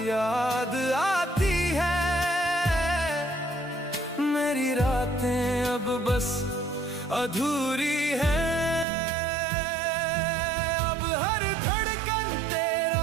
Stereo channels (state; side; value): drops out; left; at 8.8 s